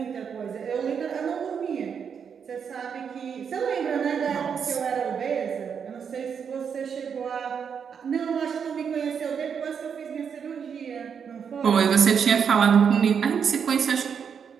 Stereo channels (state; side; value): quieter; left; 7.0 dB